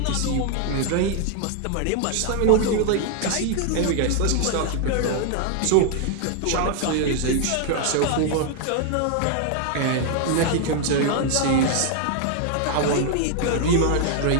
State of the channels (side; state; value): both; different; correlation 0.00